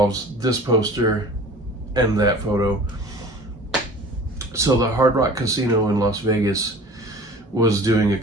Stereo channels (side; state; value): both; normal; correlation 0.43